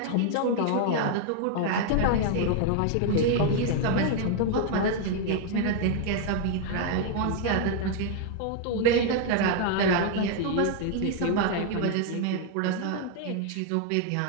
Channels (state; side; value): different; both; correlation 0.00